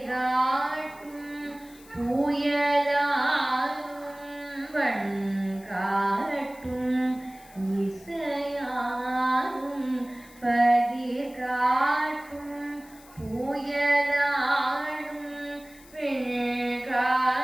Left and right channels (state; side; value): noise; left; hiss, 24 dB below the sound